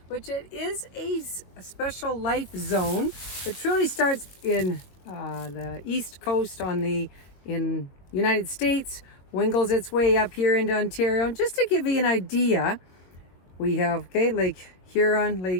which it is a special life zone. It truly starts in the east coast in United States, wingles its way up here into Ontario. And just to give you an idea, we have Lake Huron,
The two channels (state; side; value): late; right; 22 ms